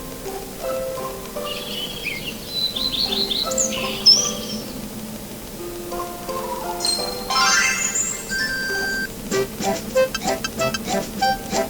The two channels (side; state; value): both; identical; correlation 1.00